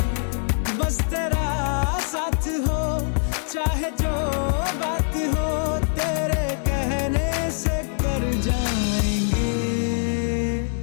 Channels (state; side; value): silent; right; digital silence